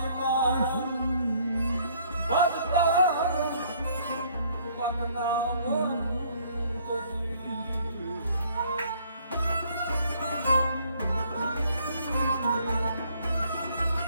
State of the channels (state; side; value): inverted; both; correlation -0.62